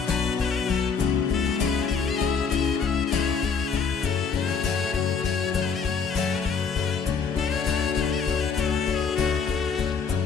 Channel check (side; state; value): right; quieter; 5.8 dB